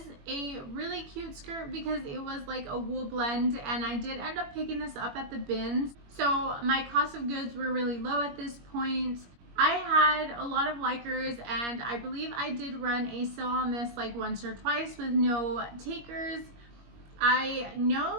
a really cute skirt because it was like a wool blend, and I did end up picking this up at the bins. So my cost of goods were really low at this point. I had a lot of likers, and I believe I did run a sale on this like once or twice with no takers. I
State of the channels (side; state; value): left; late; 21 ms